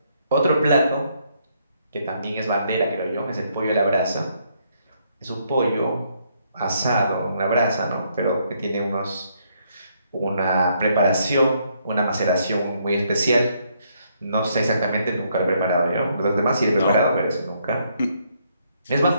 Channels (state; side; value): inverted; both; correlation -0.72